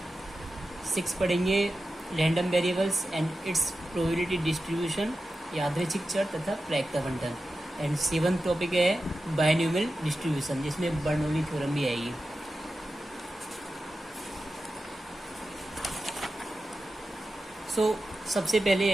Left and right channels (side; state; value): both; normal; correlation 0.92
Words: सिक्स पढ़ेंगे random variables and it's probability distribution, यादृच्छिक चर तथा प्रायिकता बंटन। एंड सेवंथ टॉपिक है बायनोमियल डिस्ट्रीब्यूशन, जिसमें बर्नौली थ्योरम भी आएगी। सबसे पहले